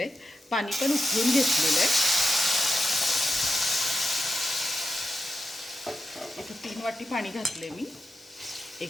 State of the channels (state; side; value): normal; both; correlation 0.89